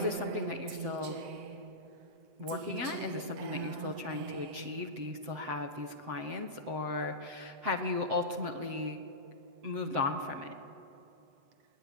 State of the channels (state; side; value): late; left; 7.6 ms